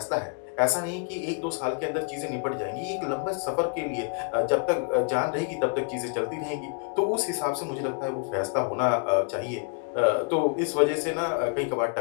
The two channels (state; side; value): quieter; right; 39.9 dB